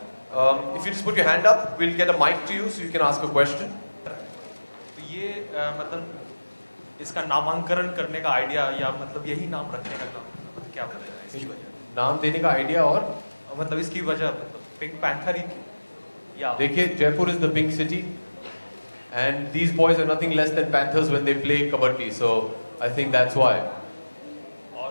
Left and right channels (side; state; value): both; inverted; correlation -1.00